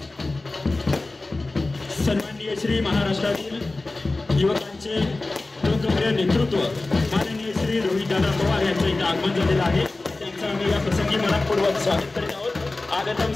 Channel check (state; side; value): quieter; right; 3.2 dB